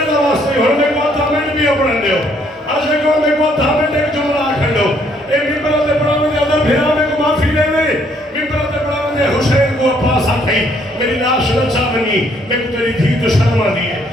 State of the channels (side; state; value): both; normal; correlation 0.67